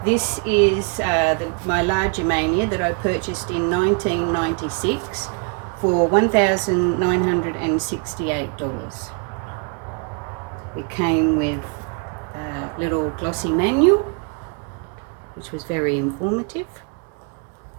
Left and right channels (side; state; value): left; quieter; 37.4 dB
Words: This is my LaGermania that I purchased in 1996 for $1,968. It came with a little glossy manual, which was very informative.